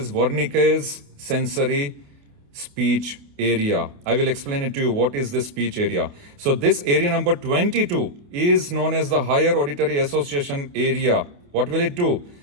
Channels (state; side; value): late; left; 28 ms